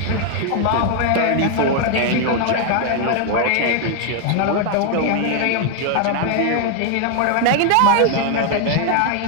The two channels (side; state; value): both; different; correlation 0.01